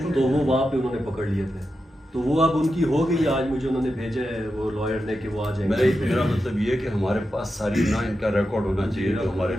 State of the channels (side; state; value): both; normal; correlation 0.89